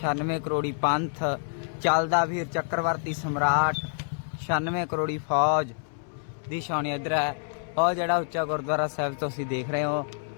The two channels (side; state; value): right; silent; 60 dB below the other